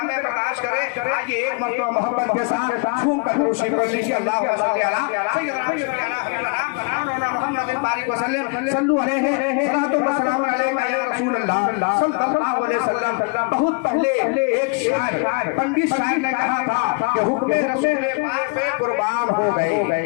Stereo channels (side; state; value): right; quieter; 32.0 dB